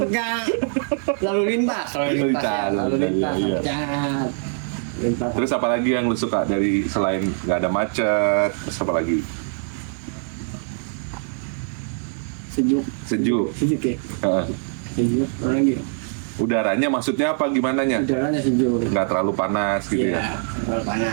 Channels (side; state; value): left; silent; 64 dB below the other